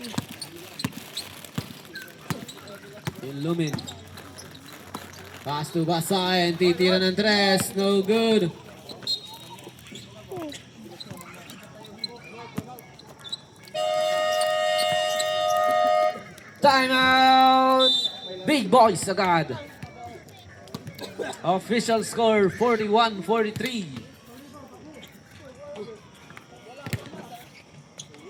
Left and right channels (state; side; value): identical; both; correlation 1.00